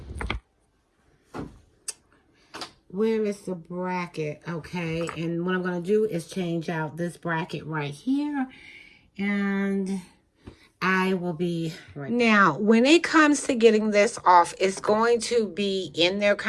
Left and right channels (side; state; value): both; identical; correlation 1.00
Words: Where is the bracket? Okay, and what I'm going to do is change out this bracket right here. And I will be right back. Now, when it comes to getting this off, it's going to be in there